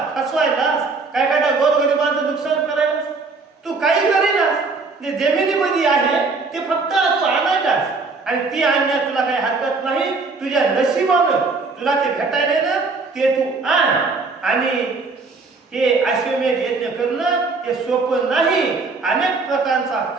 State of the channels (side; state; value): left; quieter; 4.1 dB